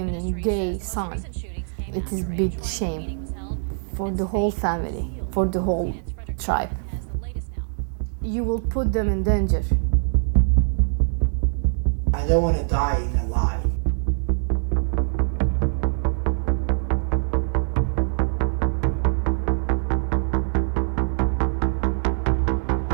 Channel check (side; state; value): left; silent; digital silence